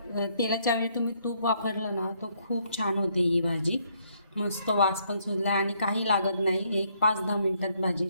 तेलाच्या ऐवजी तुम्ही तूप वापरलं ना तो खूप छान होते ही भाजी। मस्त वास पण सुटला आणि काही लागत नाही, 5-10 मिनिटात भाजी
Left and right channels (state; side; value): inverted; both; correlation -0.70